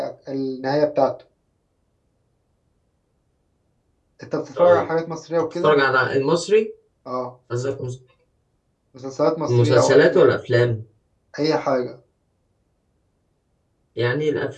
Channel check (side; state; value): both; identical; correlation 1.00